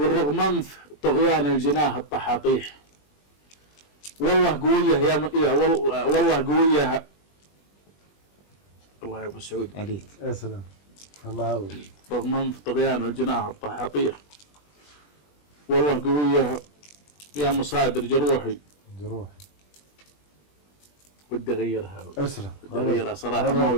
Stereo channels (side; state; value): right; late; 20 ms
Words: رغم أنف طغيان الجناه الطحاطيح، والله قوية يا والله قوية. الله يا أبو سعود. عليك. يا سلام. الله. رغم أنف طغيان الجناه الطحاطيح، والله قوية يا مصادر جروحي. ودي أغيرها. أسلم. ودي أغيرها صراحة، ما